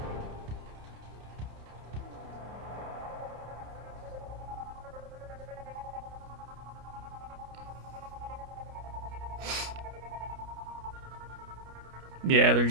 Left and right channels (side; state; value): left; late; 30 ms